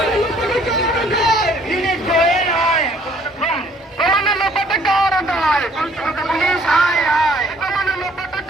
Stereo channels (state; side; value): normal; both; correlation 0.60